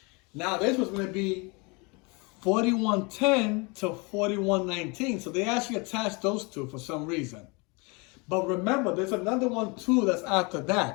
Now this was going to be 4110 to 4119. So they actually attached those two for some reason. But remember, there's another one too that's after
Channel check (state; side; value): quieter; right; 29.2 dB